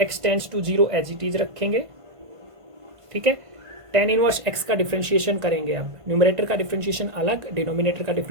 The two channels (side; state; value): left; late; 1.5 ms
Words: x tends to 0 as it is रखेंगे। ठीक है, tan इनवर्स x का डिफरेंशिएशन करेंगे। अब न्यूमरेटर का डिफरेंशिएशन अलग, डिनोमिनेटर का